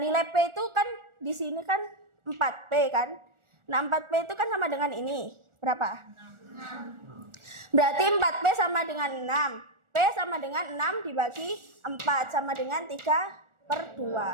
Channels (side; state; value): left; late; 1.4 ms